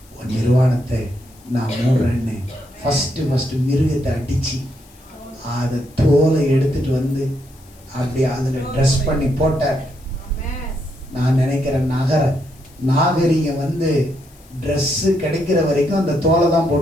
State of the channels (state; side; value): noise; left; hiss, 27 dB below the sound